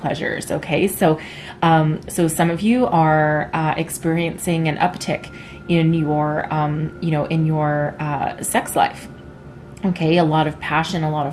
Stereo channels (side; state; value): both; identical; correlation 1.00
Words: okay? So, so some of you are experiencing an uptick in your, you know, in your sex life. Okay, a lot of passion, a lot